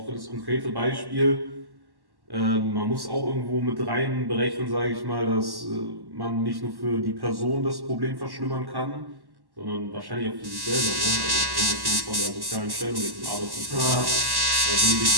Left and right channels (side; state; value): left; late; 1.1 ms